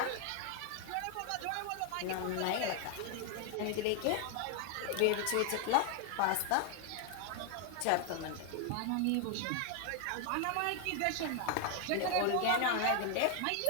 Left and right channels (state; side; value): different; both; correlation 0.00